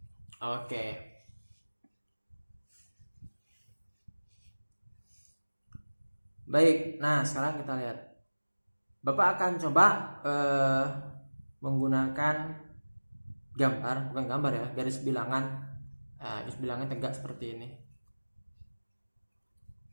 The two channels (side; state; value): both; inverted; correlation -1.00